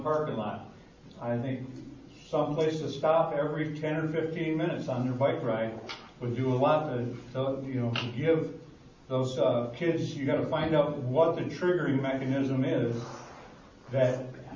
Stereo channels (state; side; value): identical; both; correlation 1.00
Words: parking lot. I think some place to stop every 10 or 15 minutes on their bike ride would do a lot to give those kids. You got to find out what the triggering mechanism is that